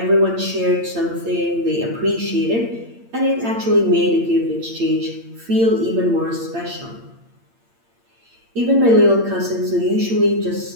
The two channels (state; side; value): late; left; 8.7 ms